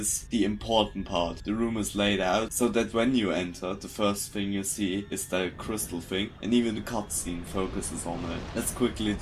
the important part. The room is laid out so that when you enter, the first thing you see is the crystal thing, and even the cutscene focuses on it. Let's quickly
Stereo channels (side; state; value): both; identical; correlation 1.00